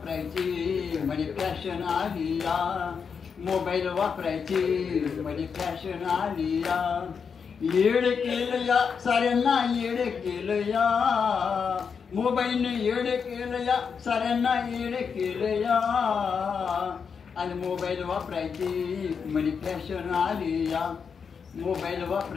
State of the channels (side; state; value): right; quieter; 6.2 dB